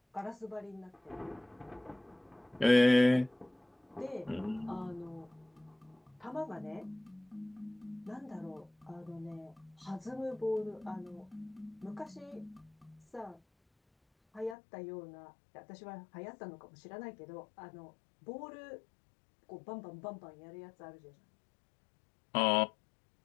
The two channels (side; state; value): right; drops out; at 14.6 s